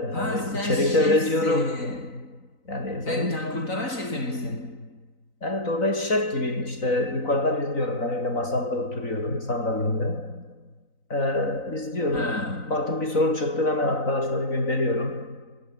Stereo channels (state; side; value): late; right; 3.9 ms